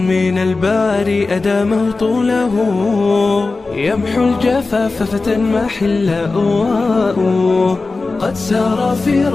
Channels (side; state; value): right; quieter; 3.7 dB